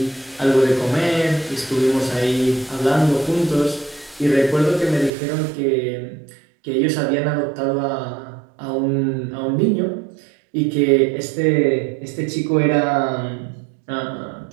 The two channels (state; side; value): drops out; left; at 5.1 s